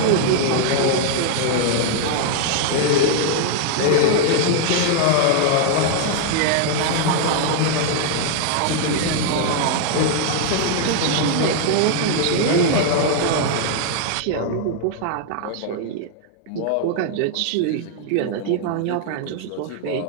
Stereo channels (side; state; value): both; different; correlation 0.00